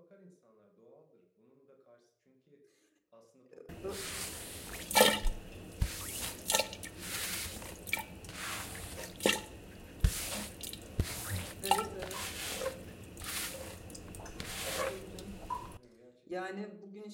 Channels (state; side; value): identical; both; correlation 1.00